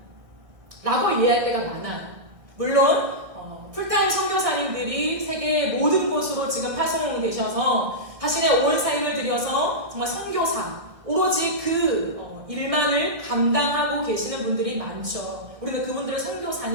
라고 이해할 때가 많아요. 물론 풀타임 선교사님들이 세계의 모든 곳으로 지금 파송되셔서 자신의 온 삶을 들여서 정말 선교사, 오로지 그 일만을 감당하고 계시는 분들이 많죠. 우리는 그분들을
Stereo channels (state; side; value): late; left; 1.6 ms